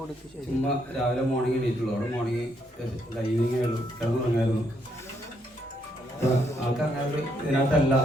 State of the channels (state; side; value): normal; both; correlation 0.74